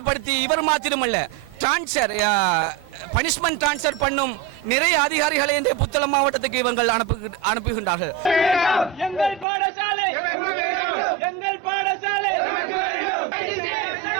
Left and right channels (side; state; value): left; drops out; at 9.5 s